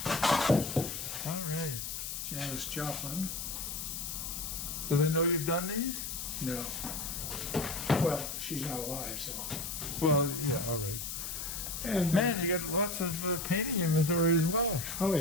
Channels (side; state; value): left; noise; hiss, 5 dB below the sound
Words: All right. Janis Joplin. Do they know you've done these? No. Well, she's not alive, so. Well, yeah, all right. And Man, you got lots of painting inventory as well. oh